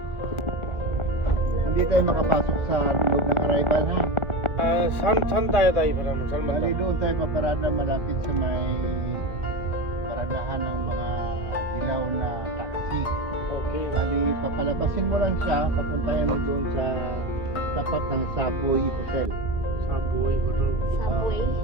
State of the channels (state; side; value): late; right; 1.5 ms